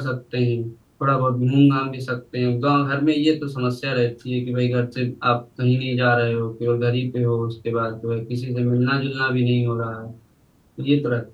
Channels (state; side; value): identical; both; correlation 1.00